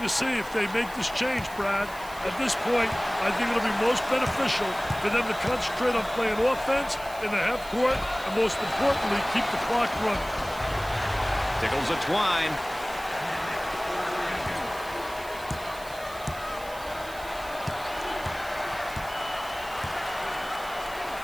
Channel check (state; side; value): noise; right; hiss, 18 dB below the sound